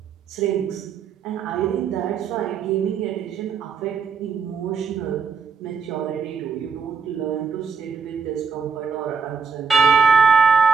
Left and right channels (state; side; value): quieter; left; 5.7 dB